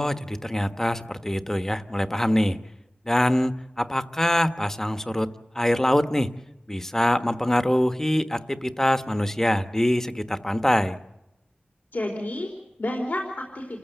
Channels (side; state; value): both; normal; correlation 0.98